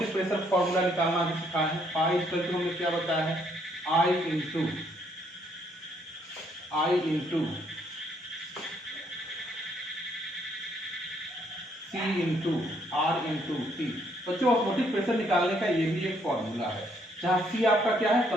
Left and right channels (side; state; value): both; normal; correlation 0.69